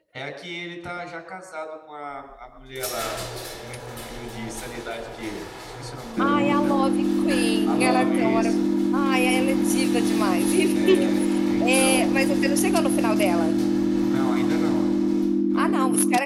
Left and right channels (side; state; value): both; identical; correlation 1.00